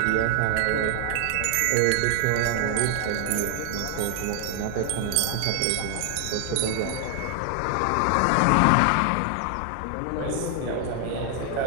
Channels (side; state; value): both; different; correlation 0.00